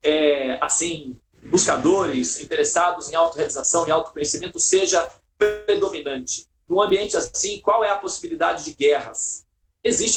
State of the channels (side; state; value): both; identical; correlation 1.00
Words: assim, buscadores, interessados em autorrealização e autoconhecimento, seja predominante. Num ambiente assim, qual é a possibilidade de guerras?